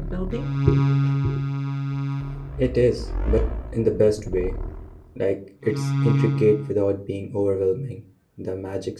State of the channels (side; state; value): both; identical; correlation 1.00